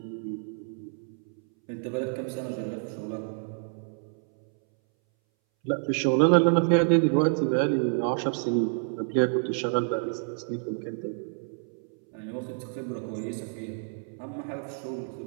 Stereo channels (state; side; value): silent; left; 59 dB below the other